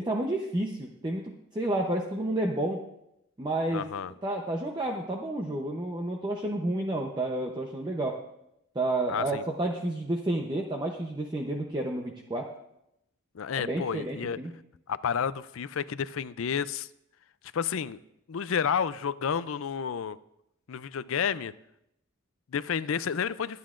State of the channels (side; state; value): both; normal; correlation 0.32